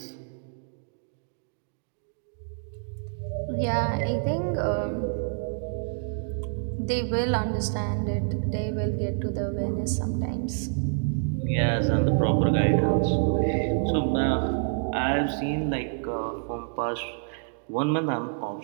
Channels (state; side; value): silent; left; digital silence